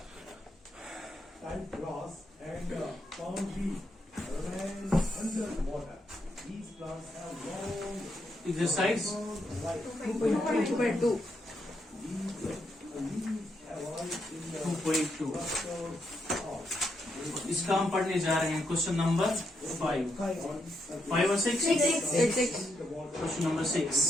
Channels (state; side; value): normal; both; correlation 0.80